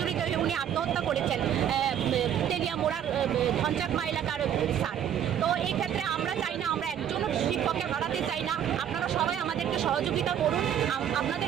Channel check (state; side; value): quieter; left; 9.6 dB